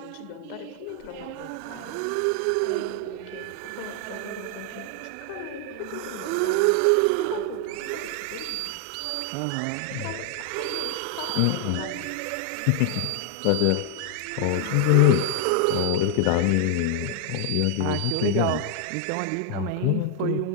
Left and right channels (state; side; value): different; both; correlation 0.00